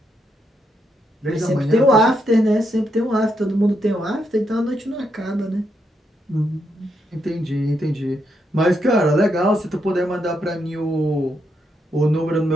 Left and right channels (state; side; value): normal; both; correlation 0.79